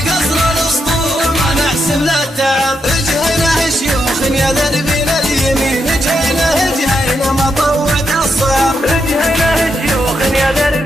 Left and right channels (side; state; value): both; normal; correlation 0.82